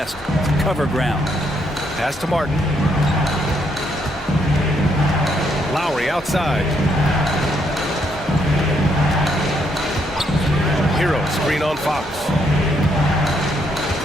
to cover ground. Pass to Martin. Lowry outside. Hero screen on Fox.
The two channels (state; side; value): normal; both; correlation 0.74